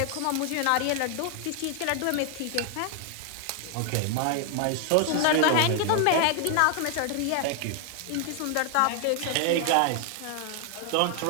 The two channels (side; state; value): both; different; correlation 0.00